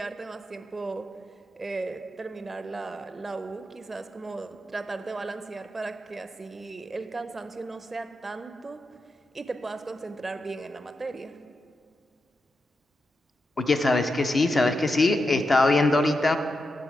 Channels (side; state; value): both; normal; correlation 0.87